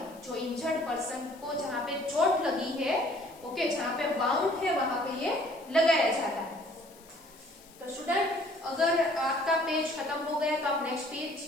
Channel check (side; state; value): left; noise; hiss, 24 dB below the sound